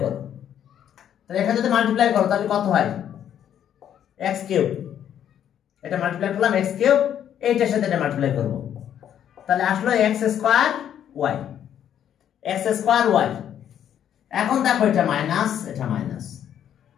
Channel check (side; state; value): right; quieter; 9.9 dB